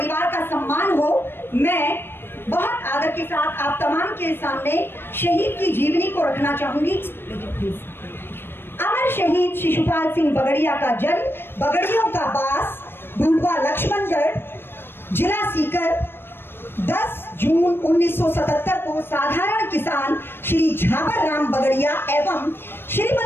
का सम्मान हो, मैं बहुत आदर के साथ आप तमाम के सामने शहीद की जीवनी को रखना चाहूंगी। अमर शहीद शिशुपाल सिंह बगड़िया का जन्म बगड़ियों का बास, ढूंढवा लक्ष्मणगढ़, जिला सीकर 10 जून 1977 को साधारण किसान श्री झाबर राम बगड़िया एवं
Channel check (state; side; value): late; right; 0.10 ms